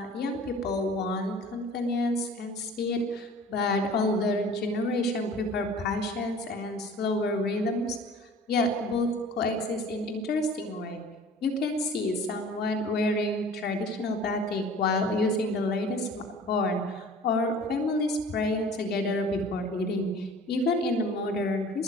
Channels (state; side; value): normal; both; correlation 0.45